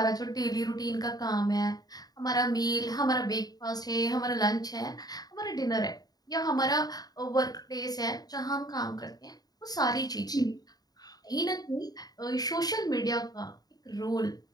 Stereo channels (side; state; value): right; late; 0.19 ms